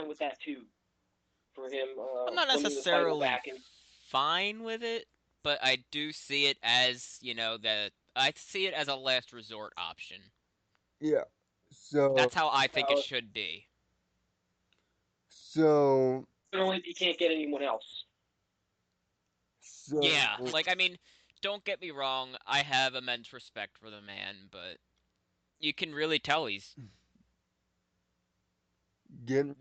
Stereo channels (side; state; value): both; identical; correlation 1.00